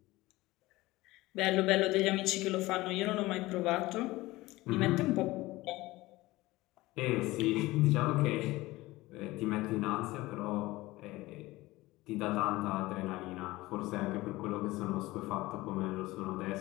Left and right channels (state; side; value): quieter; right; 19.3 dB